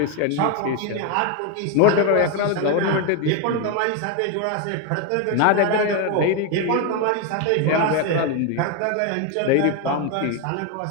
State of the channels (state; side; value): different; both; correlation 0.01